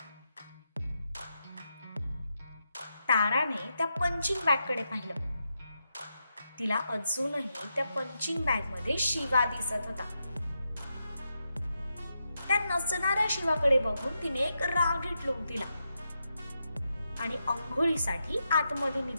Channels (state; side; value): inverted; both; correlation -0.85